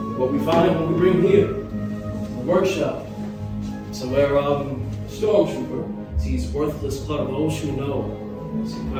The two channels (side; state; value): both; identical; correlation 1.00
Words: What we find when we bring here, a workshop, somewhere stormtrooper sees worthless clutter of those who know some